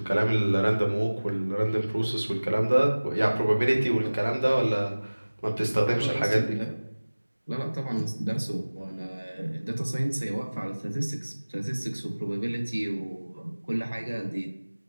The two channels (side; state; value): both; inverted; correlation -1.00